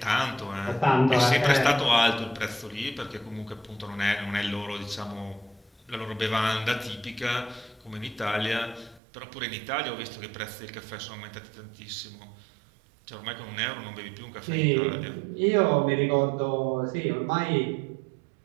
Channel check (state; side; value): drops out; left; at 9.0 s